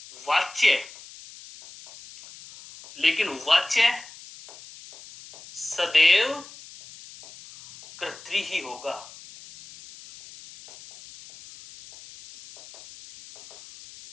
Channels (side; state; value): left; noise; hiss, 19 dB below the sound